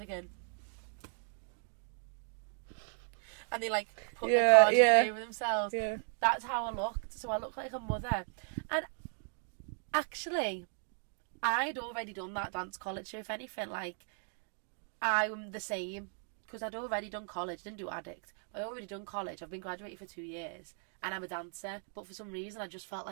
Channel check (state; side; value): silent; left; 54 dB below the other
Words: And they like put the cardigan over themselves. Yeah. That's how I looked. So I looked like a mother. And actually, I'd already done that dance college. So if anything, like, I'm the same. Because I'd already done college, didn't do addict. But I'd already done college. I've been graduated for 2 years. And I'm a dancer. But for some reason, I just felt